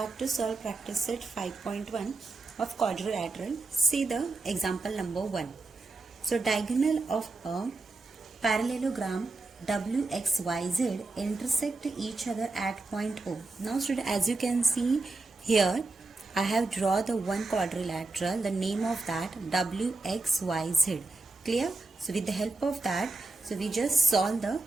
to solve practice set 5.1 of quadrilateral. See the example number 1. So diagonal of a parallelogram WXYZ intersect each other at point O. Now student, as you can see here, I have drawn the one quadrilateral, the name of that WXYZ. Clear? So with the help of that, so we just solve the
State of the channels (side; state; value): left; quieter; 3.4 dB